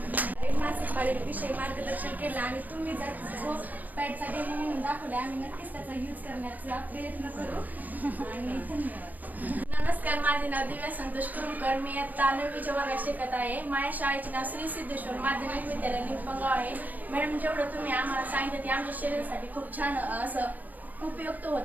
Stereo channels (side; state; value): left; late; 0.083 ms